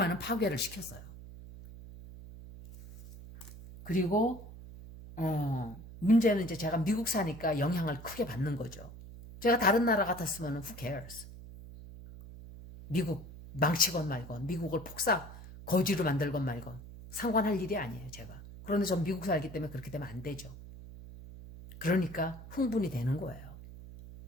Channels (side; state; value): right; noise; hum, 15 dB below the sound